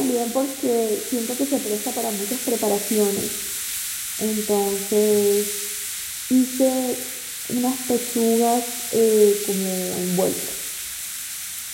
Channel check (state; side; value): identical; both; correlation 1.00